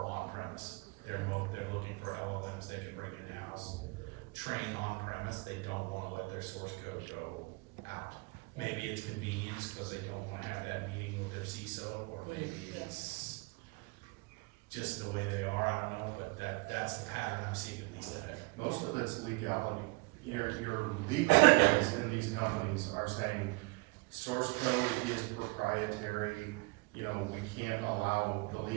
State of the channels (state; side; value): quieter; left; 27.5 dB